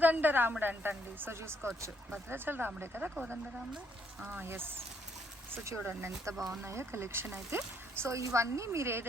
రాముడు అంటండి. సో చూసుకోవచ్చు, భద్రాచల రాముడే కదా కోదండ రాముడు. ఎస్. సో చూడండి ఎంత బాగున్నాయో కలెక్షన్ అయితే. సో ఇవన్నీ మీరు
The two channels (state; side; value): normal; both; correlation 0.70